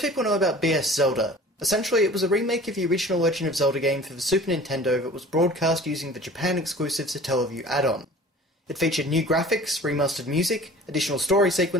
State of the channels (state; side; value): normal; both; correlation 0.44